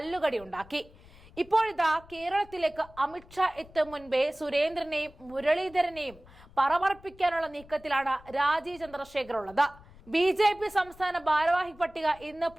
ഉണ്ടാക്കി. ഇപ്പോഴിതാ കേരളത്തിലേക്ക് അമിത്ഷാ എത്തും മുൻപേ സുരേന്ദ്രനെയും മുരളീധരനെയും പറമർപ്പിക്കാനുള്ള നീക്കത്തിലാണ് രാജീവ് ചന്ദ്രശേഖർ ഉള്ളത്. ബി.ജെ.പി. സംസ്ഥാന ഭാരവാഹി പട്ടിക ഇന്ന്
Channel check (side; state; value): left; noise; rumble, 23 dB below the sound